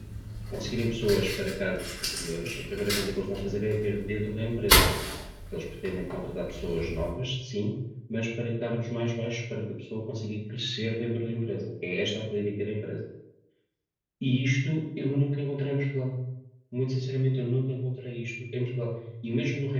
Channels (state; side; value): identical; both; correlation 1.00